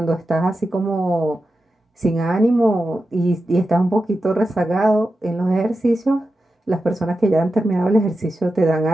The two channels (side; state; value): both; normal; correlation 0.91